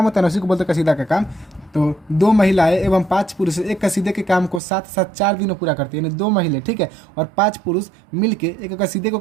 होता है ना उसी को बोलते हैं कसीदा का काम। तो 2 महिलाएं एवं 5 पुरुष एक कसीदे के काम को साथ साथ 4 दिन में पूरा करते हैं, यानी 2 महिलाएं, ठीक है, और 5 पुरुष मिलके एक कसीदे को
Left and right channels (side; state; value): left; drops out; at 4.6 s